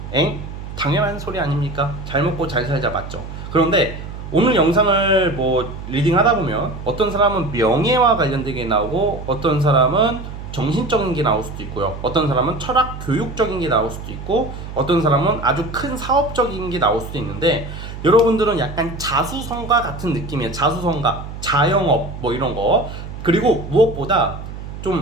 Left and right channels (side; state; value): right; noise; hum, 10 dB below the sound